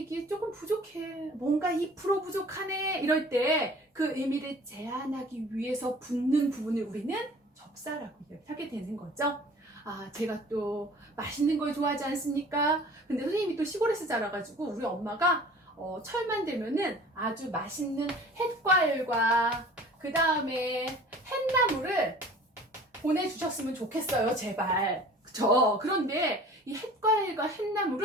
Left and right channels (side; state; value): both; normal; correlation 0.46